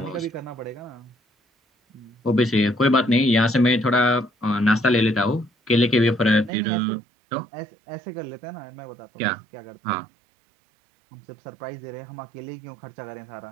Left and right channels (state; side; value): drops out; left; at 6.5 s